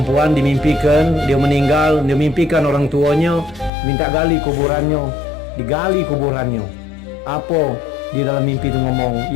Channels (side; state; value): right; drops out; at 3.7 s